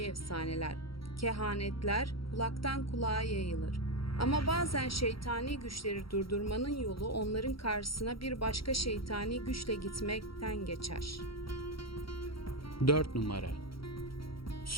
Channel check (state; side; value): late; right; 0.74 ms